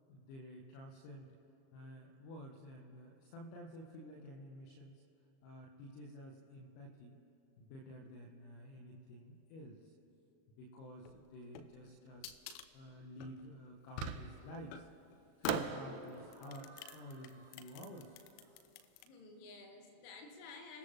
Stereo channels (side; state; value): right; late; 37 ms